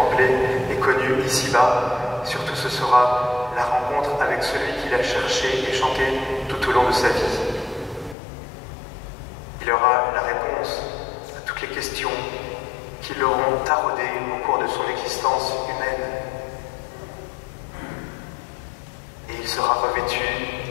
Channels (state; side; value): drops out; right; at 8.2 s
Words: et connues ici-bas. Surtout, ce sera la rencontre avec celui qu'il a cherché et chanté tout au long de sa vie. Il aura la réponse à toutes les questions qui l'auront taraudé au cours de son existence humaine. Et il sera revêtu